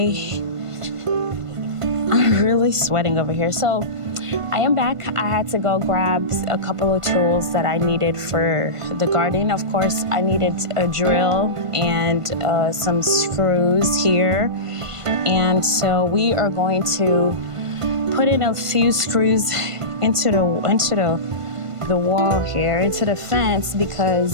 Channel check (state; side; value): late; left; 1.5 ms